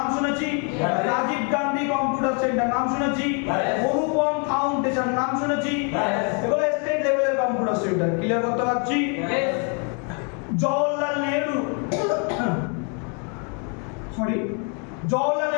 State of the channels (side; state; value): right; quieter; 38.0 dB